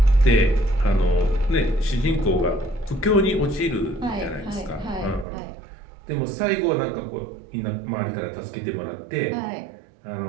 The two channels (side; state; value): left; drops out; at 5.2 s